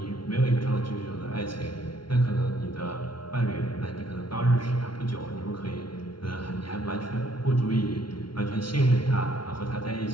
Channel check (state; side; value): late; right; 0.73 ms